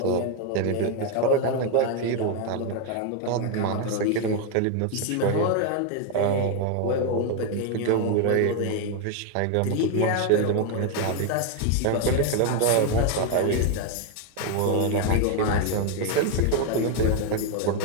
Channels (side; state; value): both; different; correlation 0.01